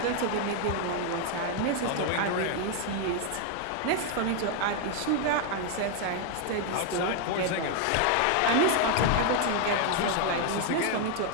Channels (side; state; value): both; different; correlation 0.00